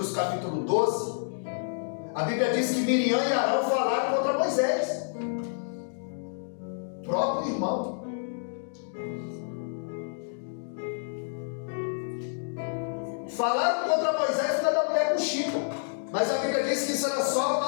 capítulo 12, a Bíblia diz que Miriam e Arão falaram contra Moisés, próprio irmão. Falaram contra Moisés por causa da mulher com Chico, mas a Bíblia diz que isso era só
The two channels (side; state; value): right; silent; digital silence